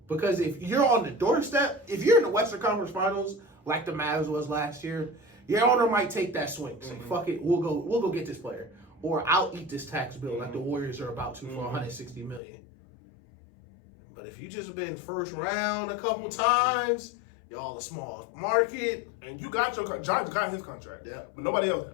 Because if you're on the doorstep, if you're in the Western Conference Finals, like the Mavs was last year, your owner might take that swing. Say, fuck it, we'll go get this player. Or I'll eat this tax bill like the Warriors are about to for $160 million. But if you just been first round a couple times, y'all a small market. And you got Giants got his contract. Yeah. But nobody else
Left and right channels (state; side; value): drops out; right; at 12.4 s